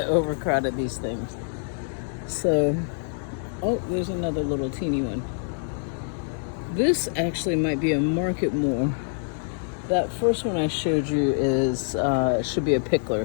overcrowded these things. So, oh, there's another little teeny one. This actually might be a market more. That first one I showed you is should be a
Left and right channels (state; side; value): silent; right; digital silence